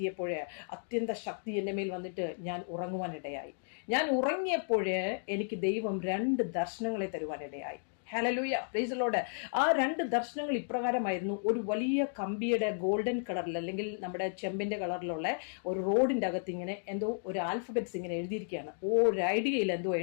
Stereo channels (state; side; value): silent; right; digital silence